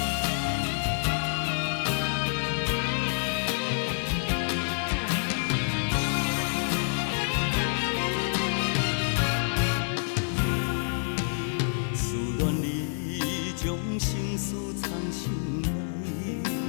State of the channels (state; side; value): silent; right; 59 dB below the other